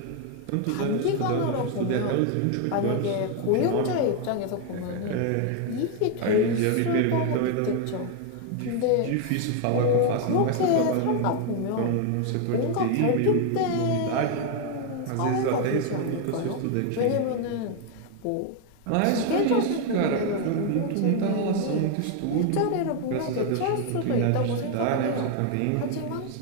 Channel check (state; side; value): different; both; correlation 0.01